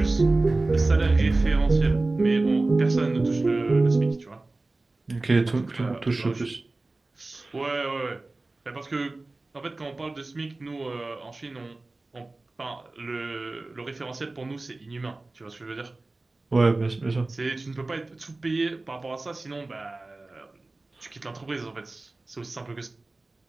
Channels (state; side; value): quieter; left; 3.1 dB